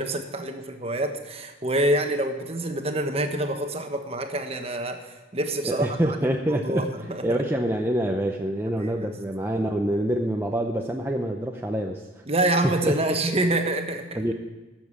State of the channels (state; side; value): normal; both; correlation 0.53